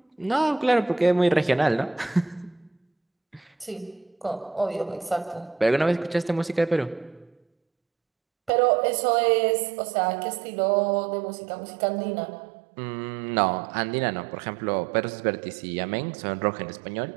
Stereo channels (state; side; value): drops out; left; at 8.5 s